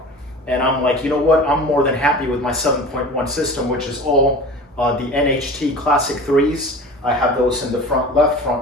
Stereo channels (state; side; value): normal; both; correlation 0.37